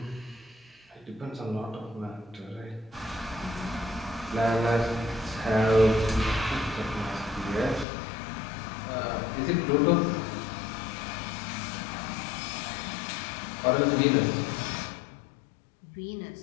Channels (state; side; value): drops out; right; at 7.9 s